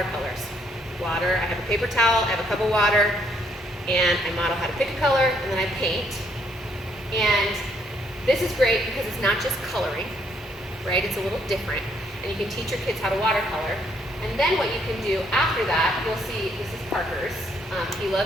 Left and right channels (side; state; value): both; normal; correlation 0.69